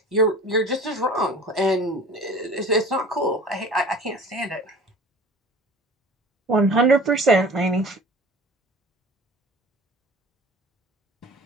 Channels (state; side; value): normal; both; correlation 0.43